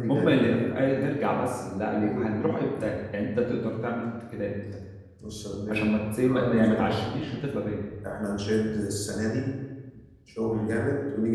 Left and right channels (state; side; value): identical; both; correlation 1.00